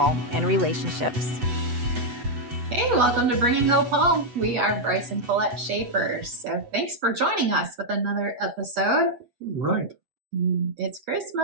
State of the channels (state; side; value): late; left; 8.1 ms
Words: and relationships. Hey, welcome to Bringing Hope Home. We are Bryce and Colette Schaefer. So thanks for joining us with another episode. Right. It's